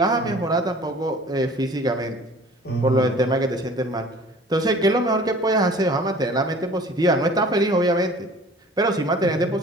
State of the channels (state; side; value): normal; both; correlation 0.47